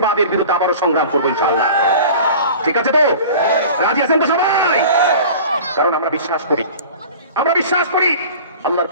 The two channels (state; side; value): inverted; both; correlation -0.40